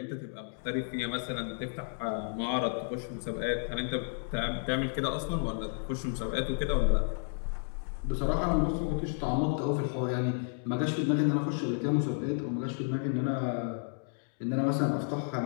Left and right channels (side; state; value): right; silent; 57 dB below the other